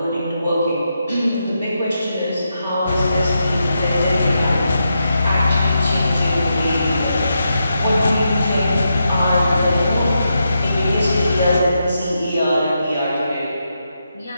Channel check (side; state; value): both; inverted; correlation -0.85